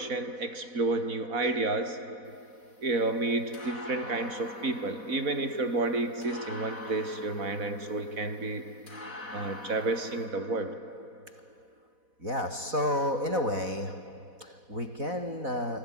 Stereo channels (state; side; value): late; left; 4.1 ms